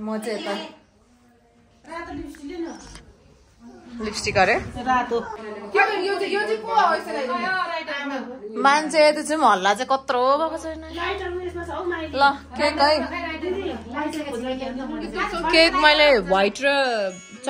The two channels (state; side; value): identical; both; correlation 1.00